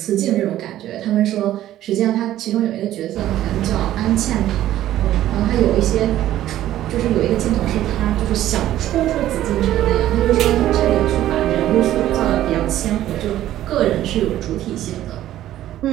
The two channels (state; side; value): quieter; left; 13.2 dB